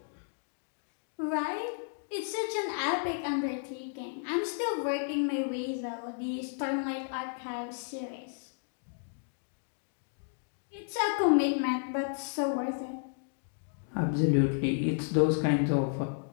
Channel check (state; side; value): silent; right; digital silence